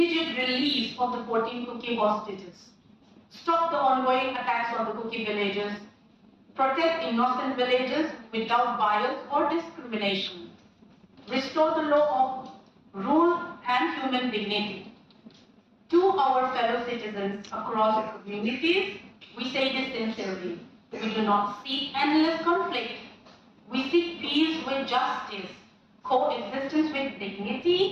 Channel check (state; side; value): identical; both; correlation 1.00